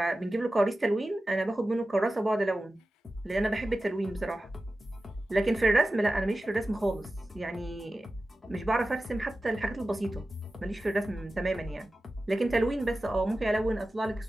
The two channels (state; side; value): normal; both; correlation 0.94